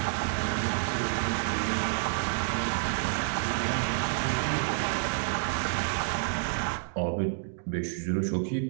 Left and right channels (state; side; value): silent; left; digital silence